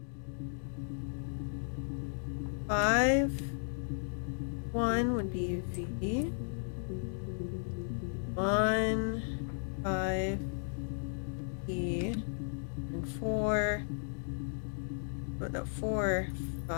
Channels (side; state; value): right; silent; digital silence